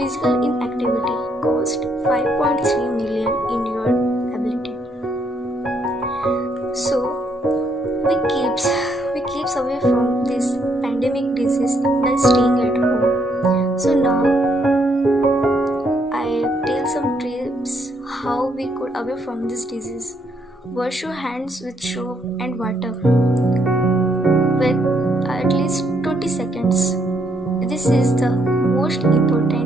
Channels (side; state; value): both; normal; correlation 0.73